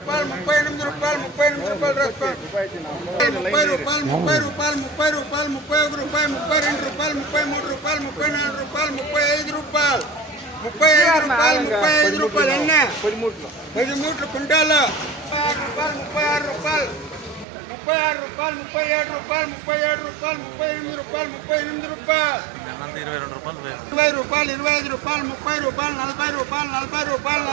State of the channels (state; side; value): drops out; left; at 17.4 s